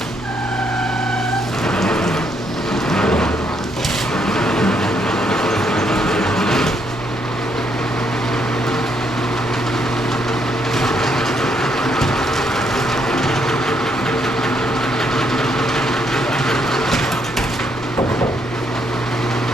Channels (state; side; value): normal; both; correlation 0.73